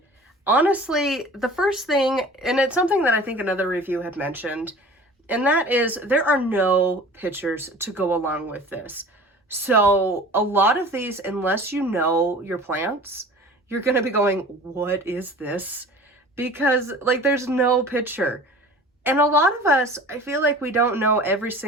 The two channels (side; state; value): both; normal; correlation 0.42